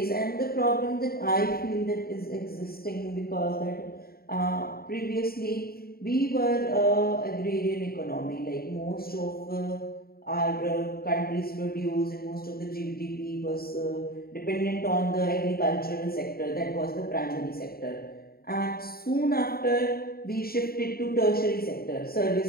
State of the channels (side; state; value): right; late; 0.44 ms